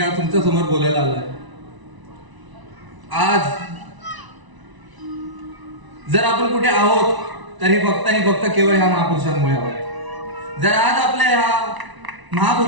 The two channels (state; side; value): late; left; 1.0 ms